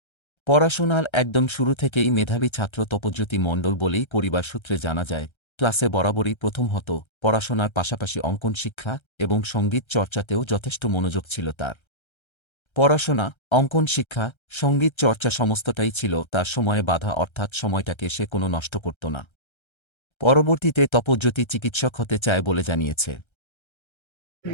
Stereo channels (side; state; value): right; late; 1.3 ms